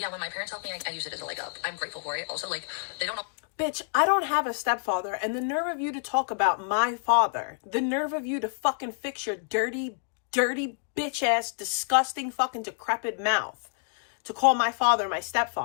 when my parents helped me, I use it as a leg up. I'm grateful for it. Also, like, they don't know. Bitch, I don't have a stepfather, and the nerve of you to talk about my father, the nerve of you to fucking fix your dirty, bitch-ass, disgusting, fucking decrepit mouth to call my father my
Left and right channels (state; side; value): silent; right; digital silence